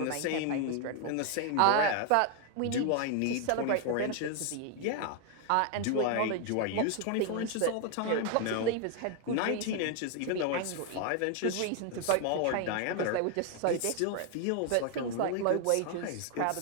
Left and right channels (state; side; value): different; both; correlation 0.01